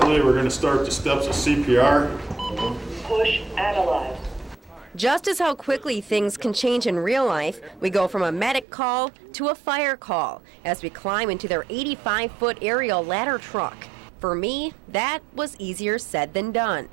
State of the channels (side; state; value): left; drops out; at 8.7 s